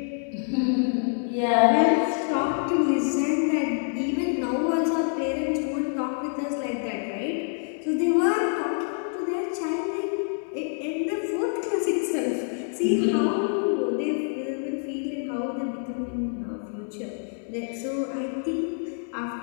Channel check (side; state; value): right; silent; 56 dB below the other